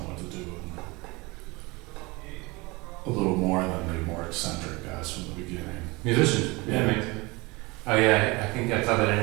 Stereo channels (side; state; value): left; quieter; 24.7 dB